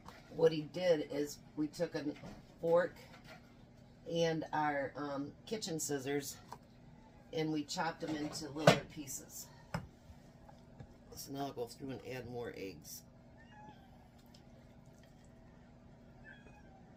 what he did is we took a fork and our kitchen scissors, and we chopped them into little pieces. So now I'll go through and add more eggs.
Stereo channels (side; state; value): both; identical; correlation 1.00